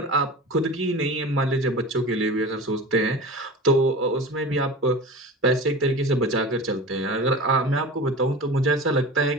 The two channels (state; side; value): normal; both; correlation 0.33